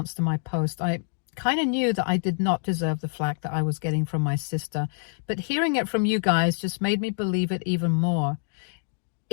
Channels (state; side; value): silent; right; digital silence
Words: to my post. I kind of knew that I did not deserve the flack that I was getting from my sister, but hearing it from you guys just made me believe it even more.